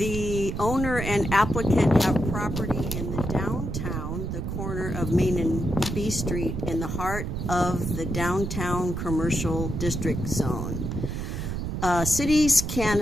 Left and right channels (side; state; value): right; noise; rumble, 3 dB below the sound